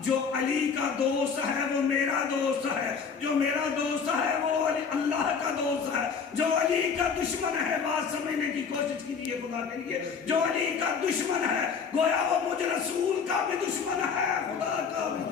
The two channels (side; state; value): right; quieter; 5.9 dB